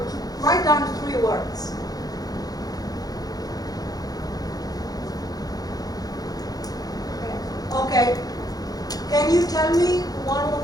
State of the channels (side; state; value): right; late; 0.18 ms